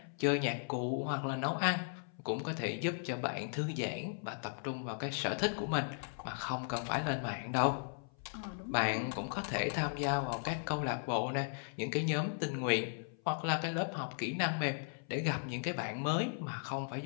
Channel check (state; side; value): silent; right; 53 dB below the other